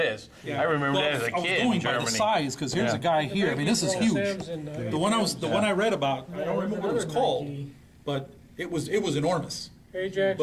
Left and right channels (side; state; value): both; identical; correlation 1.00